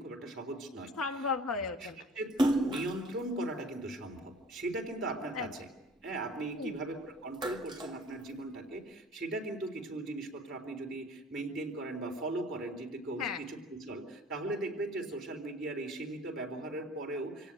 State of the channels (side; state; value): both; normal; correlation 0.48